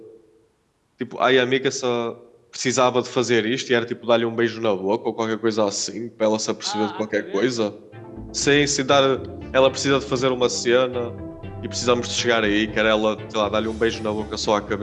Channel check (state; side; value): identical; both; correlation 1.00